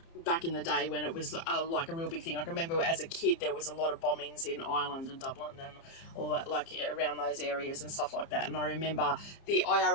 back in the day when it was like a real big thing. I can remember as a kid there was a lot of bombings in Ireland and Dublin and all that, around those areas and stuff like that. And I remember the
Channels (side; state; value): right; late; 30 ms